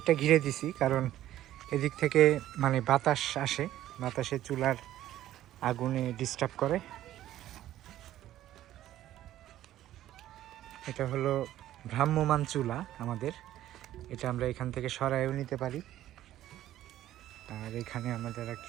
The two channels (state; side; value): quieter; left; 13.3 dB